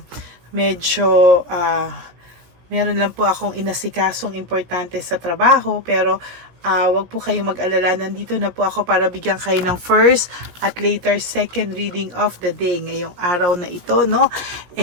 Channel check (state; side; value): late; left; 17 ms